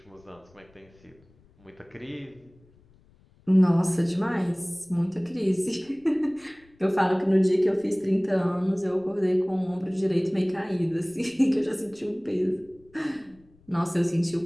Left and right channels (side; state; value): left; noise; rumble, 30 dB below the sound